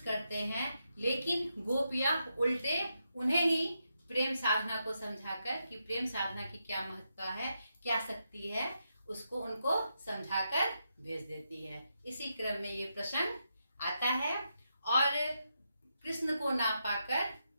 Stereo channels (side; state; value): both; inverted; correlation -0.84